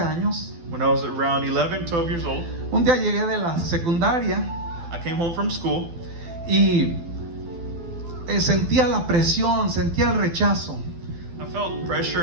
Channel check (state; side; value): late; left; 12 ms